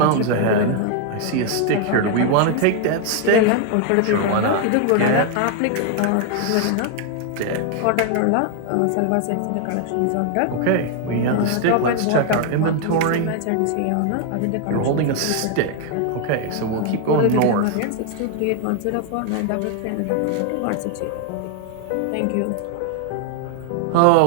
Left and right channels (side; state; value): both; different; correlation 0.00